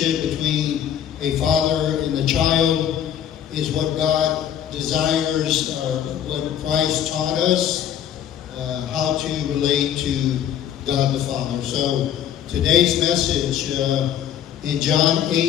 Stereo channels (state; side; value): quieter; right; 9.9 dB